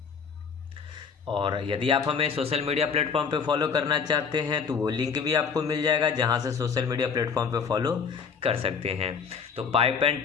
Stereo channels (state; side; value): quieter; right; 6.1 dB